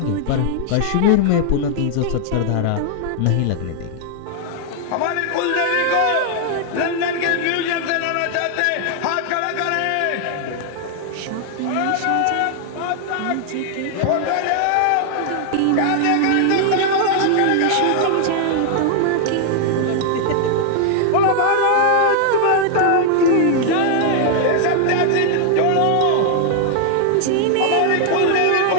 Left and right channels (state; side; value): different; both; correlation 0.00